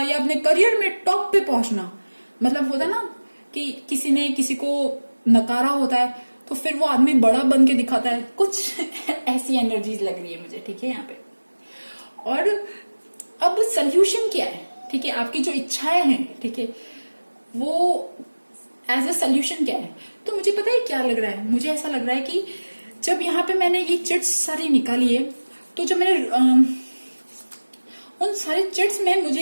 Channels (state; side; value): inverted; both; correlation -1.00